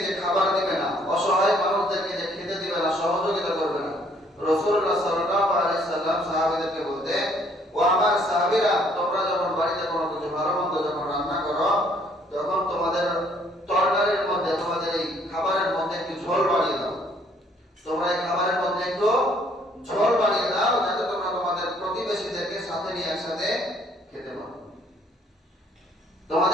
যে খাবার দিবে না, অসহায় মানুষদেরকে যে খেতে দিবে না, সহযোগিতা করবে না, রাসূলুল্লাহ সাল্লাল্লাহু আলাইহি সাল্লাম সাহাবীদেরকে বলতে, ও আমার সাহাবীরা, তোমরা যখন বাড়িতে কোনো কিছু ভালো মন্দ যখন রান্না করো, তখন তোমাদের তরকারির মধ্যে, তোমাদের এই খাবারের মধ্যে একটু ঝোল বাড়িয়ে দাও, তোমরা এই খাবারের মধ্যে একটু ঝোল বাড়িয়ে দাও, যাতে তোমরা তোমাদের প্রতিবেশীদেরকে সাথে নিয়ে একসাথে খেতে পারো।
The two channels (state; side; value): normal; both; correlation 0.63